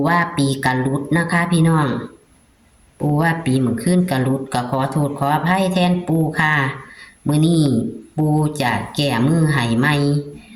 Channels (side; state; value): both; identical; correlation 1.00